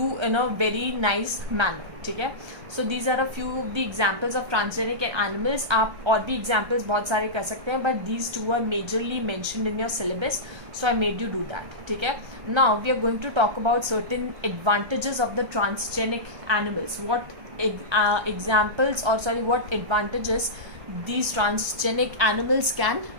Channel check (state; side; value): late; left; 1.3 ms